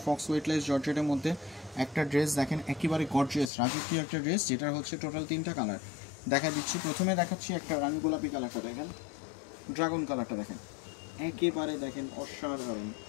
ফক্স ওয়েটলেস জর্জেটের মধ্যে একটা ড্রেস। দেখেন, একেবারে গর্জিয়াস রাজকীয় একটা ড্রেস, যেটার হচ্ছে টোটাল 3টা কালার দেখা দিচ্ছি। প্রথমে দেখাচ্ছি একটা রানী গোলাপি কালারটা, দেখেন, ড্রাগন কালারটা দেখেন, একেবারে দেখেন অসাধারণ,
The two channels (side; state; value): right; drops out; at 3.5 s